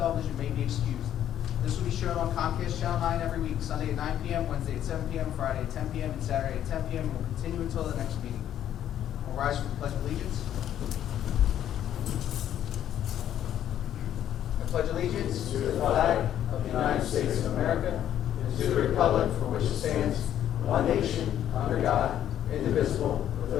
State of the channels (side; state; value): right; quieter; 10.9 dB